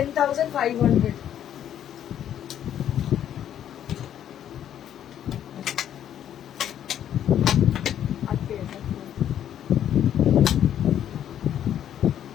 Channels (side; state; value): right; quieter; 10.3 dB